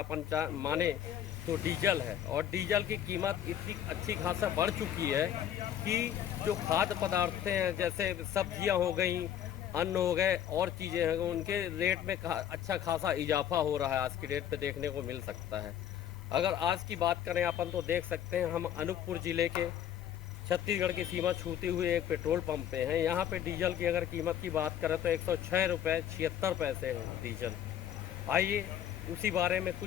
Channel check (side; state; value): right; quieter; 10.3 dB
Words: माने तो डीजल है। और डीजल की कीमत इतनी अच्छी खासा बढ़ चुकी है कि जो खाद्य पदार्थ हैं, जैसे सब्जियां हो गई, अन्न हो गए और चीज़ें हैं, उनके रेट में अच्छा खासा इजाफा हो रहा है। आज की डेट पे देखने को मिल सकता है। अगर आज की बात करें अपन तो देख सकते हैं हम अनूपपुर ज़िले के छत्तीसगढ़ की सीमा छूते हुए एक पेट्रोल पंप पे हैं। यहाँ पे डीजल की अगर कीमत की बात करें तो 106 रुपये 76 पैसे है डीजल। आइए उसी बारे में